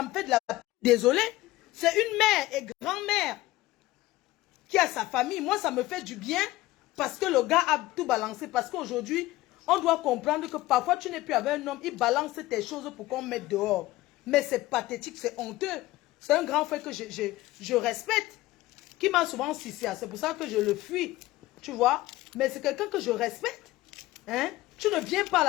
me fait de la... Désolée. C'est une mère et grand-mère qui a sa famille. Moi, ça me fait du bien parce que le gars a tout balancé. Parce qu'aujourd'hui, on doit comprendre que parfois, tu n'es plus avec un homme, il balance tes choses pour qu'on mette dehors. Mais c'est pathétique, c'est honteux. C'est un grand frère que je respecte, qui m'a souvent sucé. C'est pour ça que je le fuis, tu vois. Mais c'est quelqu'un que je respecte. Hein? Tu ne viens pas à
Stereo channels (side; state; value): right; quieter; 17.5 dB